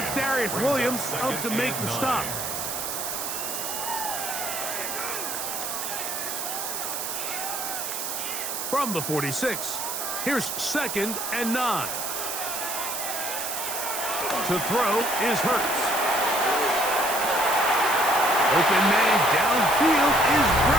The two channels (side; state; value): right; noise; hiss, 4 dB below the sound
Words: It's Darius Williams up to make the stop. From the 46, here's 2nd and 9. To throw is Hurts. Open man downfield is